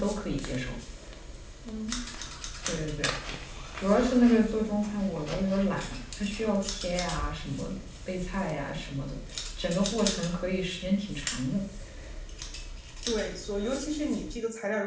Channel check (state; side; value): identical; both; correlation 1.00